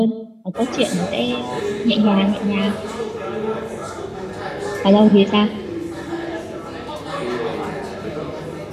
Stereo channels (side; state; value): both; identical; correlation 1.00